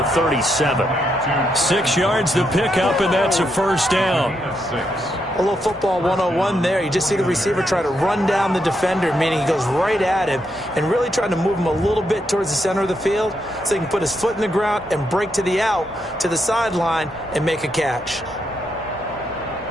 37. 6 yards to pick up, and that's a first down. A little football 101 there. You just see the receiver try to run down the defender, meaning he goes right at him and really trying to move him a little bit towards the center of the field so he can put his foot in the ground and break to the out, to the sideline, and make a catch.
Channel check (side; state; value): both; normal; correlation 0.80